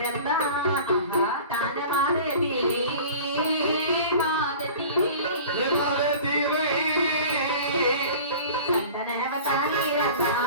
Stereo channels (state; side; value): inverted; both; correlation -0.41